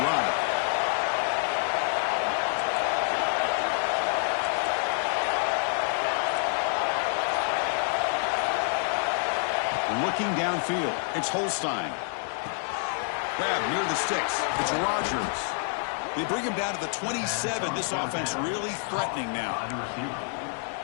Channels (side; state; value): right; silent; 57 dB below the other